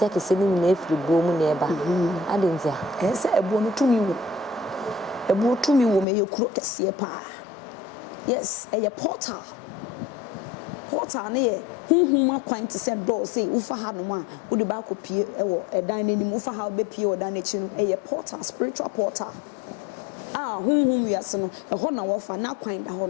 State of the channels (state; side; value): drops out; right; at 6.1 s